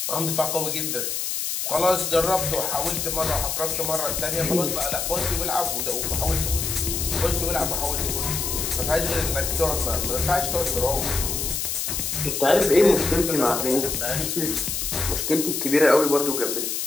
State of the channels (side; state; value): left; noise; hiss, 2 dB below the sound